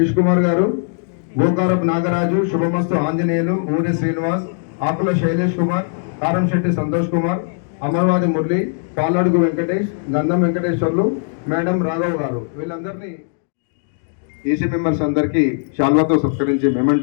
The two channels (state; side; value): silent; right; digital silence